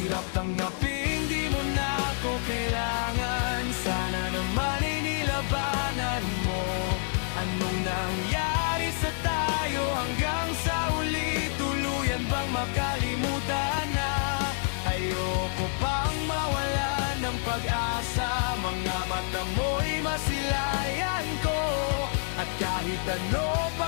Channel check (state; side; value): silent; right; 59 dB below the other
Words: tanggapin, di mo na ako kailangan. Sana naman ay nilabanan mo. Anong nangyari sa tayo hanggang sa uli? Tuluyan bang makalimutan na? Ayoko pang mawala ng pag-asa. Mga mata mo'y masilayan ko. At kahit ano